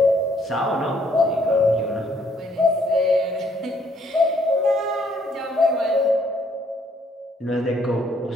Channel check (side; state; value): both; normal; correlation 0.67